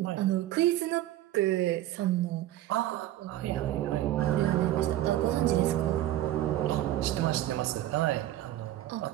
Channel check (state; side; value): quieter; left; 13.9 dB